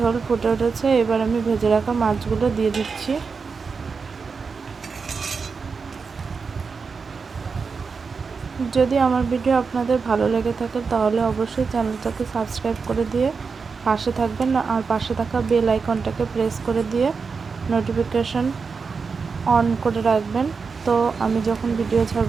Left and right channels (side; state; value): left; quieter; 5.1 dB